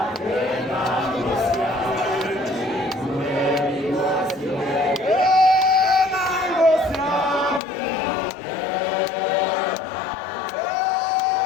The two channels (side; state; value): right; drops out; at 7.6 s